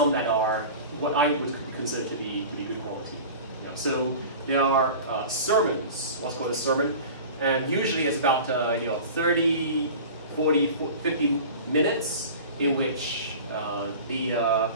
that are what I would consider to be good quality. So there are sermons, what's called a sermon, and usually it's about 30, 40, 50 minutes in which the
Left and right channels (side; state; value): both; inverted; correlation -0.37